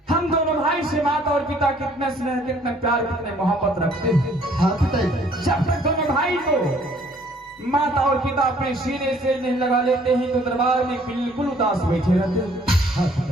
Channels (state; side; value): normal; both; correlation 0.60